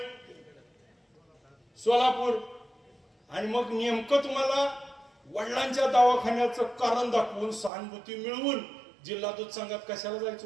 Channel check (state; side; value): drops out; left; at 7.7 s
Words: सोलापूर आणि मग नेमकं तुम्हाला वडिलांच्या दवाखान्याचं कारण दाखवून सहानुभूती मिळवून जिल्हा दूध संघात कशाला जायचं